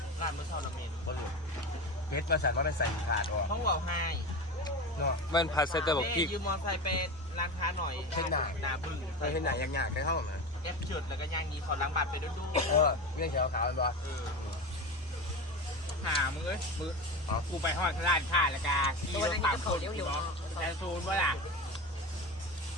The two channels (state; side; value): normal; both; correlation 0.25